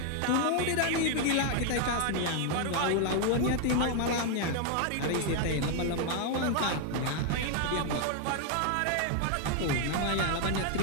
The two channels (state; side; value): different; both; correlation 0.00